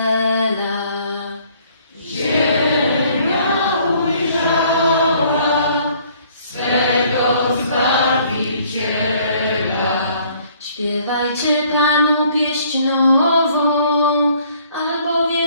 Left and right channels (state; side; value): inverted; both; correlation -0.60